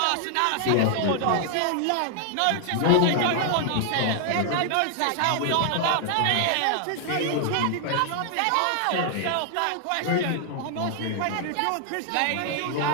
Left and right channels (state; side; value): different; both; correlation 0.00